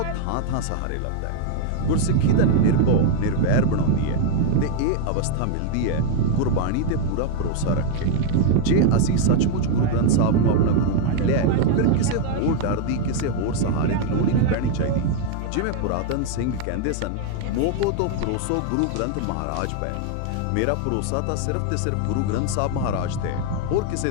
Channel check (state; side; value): different; both; correlation 0.00